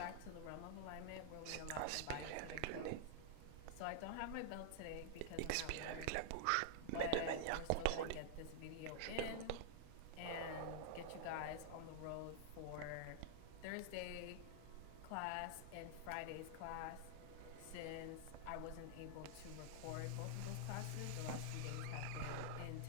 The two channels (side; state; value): both; different; correlation -0.01